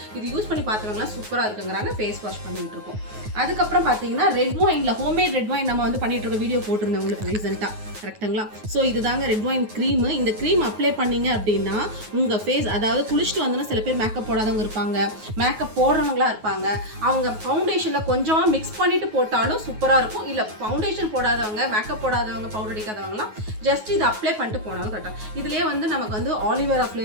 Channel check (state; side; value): late; left; 9.4 ms